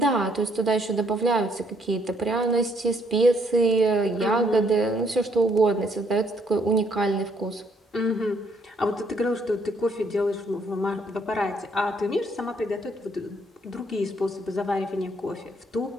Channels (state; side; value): normal; both; correlation 0.68